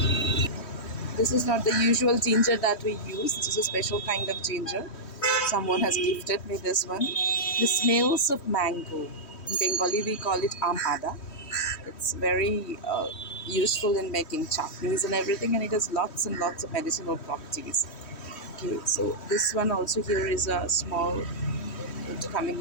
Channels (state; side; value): late; right; 3.1 ms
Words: This is not the usual ginger that we use. This is a special kind of ginger. Someone has gifted me this one. The smells of mango. In Bengali, we call it amada. It's very useful in making chutneys and everything, and it has lots and lots of medicinal properties. Okay, so this one also here is a small root